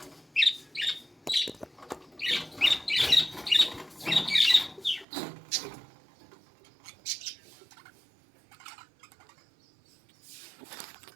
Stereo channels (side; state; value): left; drops out; at 5.1 s